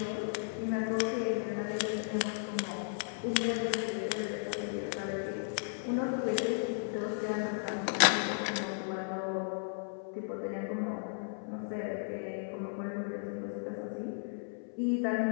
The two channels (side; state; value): right; silent; 54 dB below the other